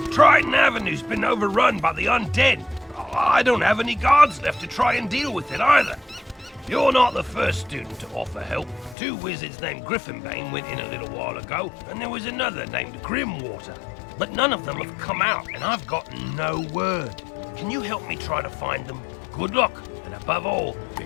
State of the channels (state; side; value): drops out; right; at 9.0 s